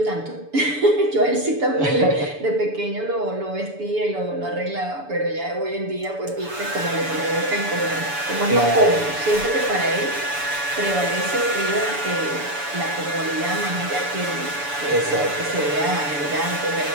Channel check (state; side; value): late; left; 7.0 ms